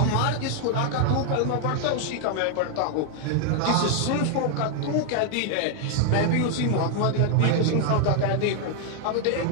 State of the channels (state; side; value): different; both; correlation 0.00